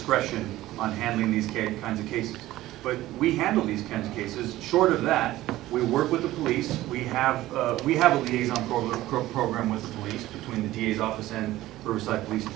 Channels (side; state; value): left; quieter; 15.9 dB